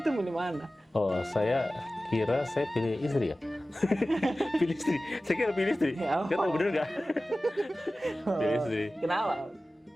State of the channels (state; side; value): normal; both; correlation 0.96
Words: pilih mana? Oh, saya kira saya pilih istri ya. Pilih istri. Saya kira pilih istri. Ya, Kita tahu bener nggak? Pilih istri. Kenapa?